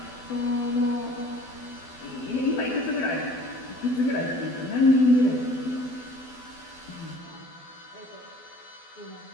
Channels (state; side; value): late; right; 12 ms